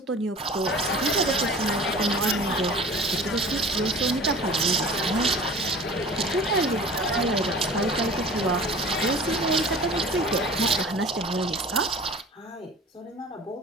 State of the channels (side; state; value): both; normal; correlation 0.41